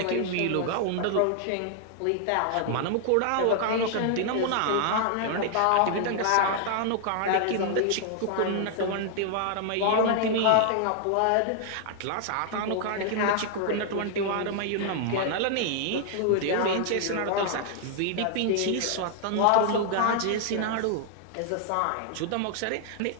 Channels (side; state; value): both; different; correlation 0.00